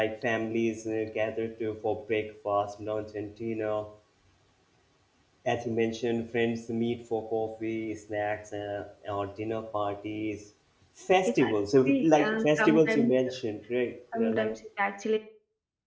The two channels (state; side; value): identical; both; correlation 1.00